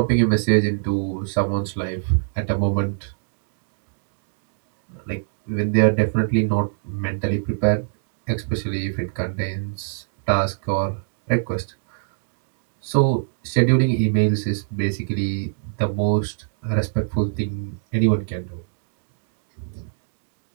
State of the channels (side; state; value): left; silent; digital silence